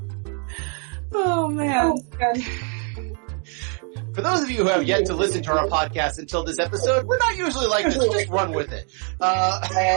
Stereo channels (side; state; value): left; quieter; 38.7 dB